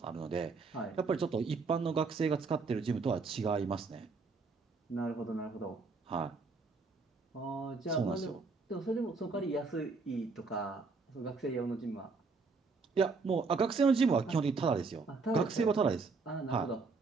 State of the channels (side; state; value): left; quieter; 4.3 dB